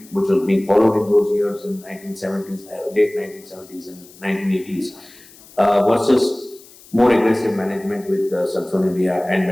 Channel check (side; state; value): left; noise; hiss, 23 dB below the sound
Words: which was being followed in those years in 1970s, late 1970s and 1980s, versus more aggressive management with sulfonylurea and